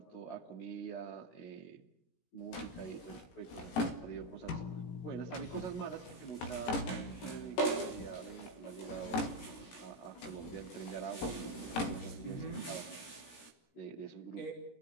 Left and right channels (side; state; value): right; late; 17 ms